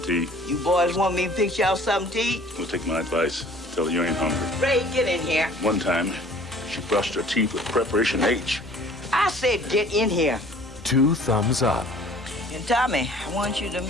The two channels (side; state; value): both; normal; correlation 0.51